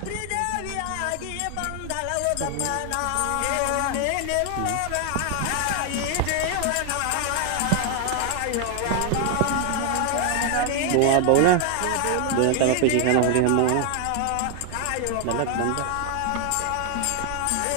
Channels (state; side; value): different; both; correlation 0.00